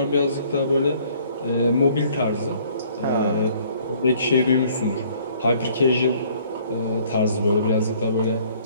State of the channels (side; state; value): both; inverted; correlation -0.58